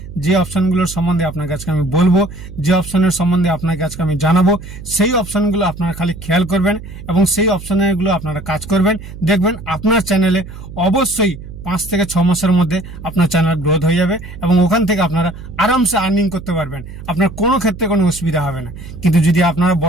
যে অপশনগুলোর সম্বন্ধে আপনাকে আজকে আমি বলবো, যে অপশনের সম্বন্ধে আপনাকে আজকে আমি জানাবো, সেই অপশনগুলো আপনারা খালি খেয়াল করবেন এবং সেই অপশনগুলো আপনারা কাজ করবেন। দেখবেন আপনার চ্যানেলে অবশ্যই 5 থেকে 6 মাসের মধ্যে আপনার চ্যানেল গ্রোথ হয়ে যাবে এবং ওখান থেকে আপনারা আরামসে আর্নিং করতে পারবেন। আপনার কোনো ক্ষেত্রে কোনো অসুবিধা হবে না। কিন্তু যদি আপনারা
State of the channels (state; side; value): noise; right; hum, 13 dB below the sound